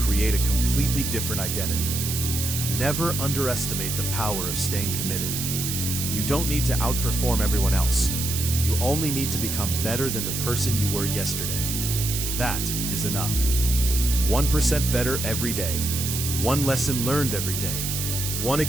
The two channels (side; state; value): right; noise; hiss, 3 dB below the sound